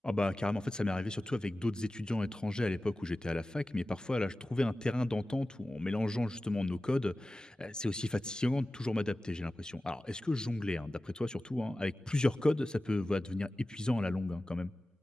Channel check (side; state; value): both; normal; correlation 0.95